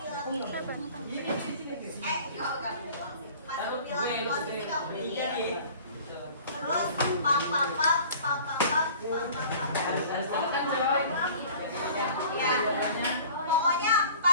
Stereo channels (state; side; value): inverted; both; correlation -0.46